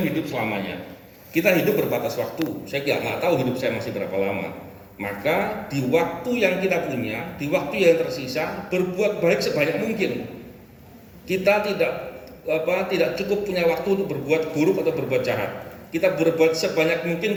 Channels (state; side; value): identical; both; correlation 1.00